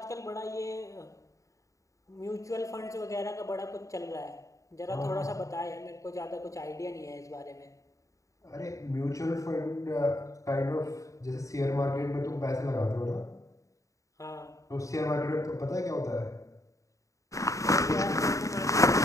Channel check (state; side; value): late; right; 0.16 ms